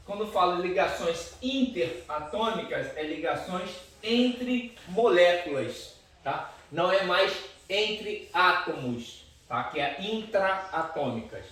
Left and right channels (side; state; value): both; identical; correlation 1.00